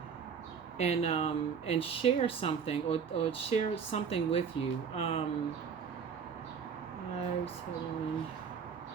share something or share something with you.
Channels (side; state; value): left; quieter; 6.6 dB